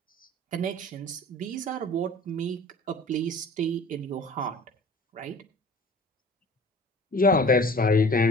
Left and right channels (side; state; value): both; normal; correlation 0.45